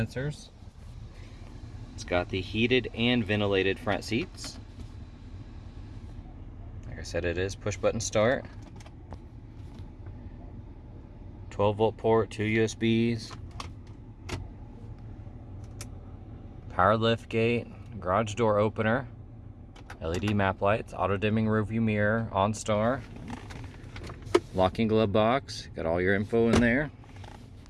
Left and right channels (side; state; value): both; identical; correlation 1.00